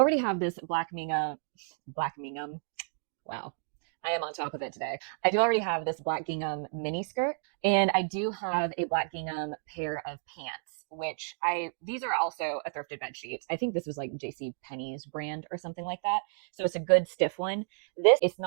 have this black gingham. Wow. I am on top of it today. I do already have this black gingham mini skirt, and I do have a black gingham pair of pants, which these are also a thrifted bed sheets. I think this was like JC Penney's brand or something like that. So it's a good stiff one. This it's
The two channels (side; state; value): left; silent; digital silence